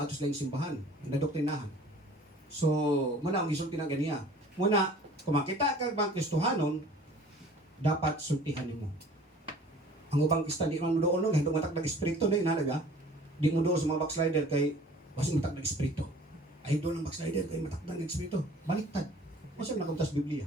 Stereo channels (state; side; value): normal; both; correlation 0.48